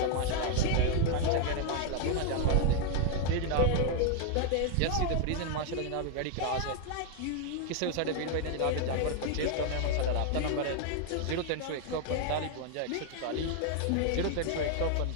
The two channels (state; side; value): different; both; correlation 0.00